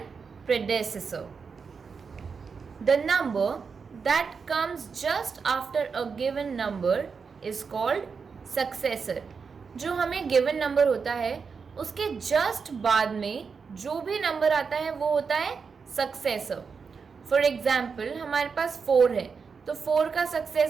predecessor. The number that comes just after a given number is called successor. जो हमें given number होता है उसके just बाद में जो भी number आता है वो होता है successor. फॉर एग्जाम्पल हमारे पास 4 है तो 4 का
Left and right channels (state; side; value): quieter; left; 5.5 dB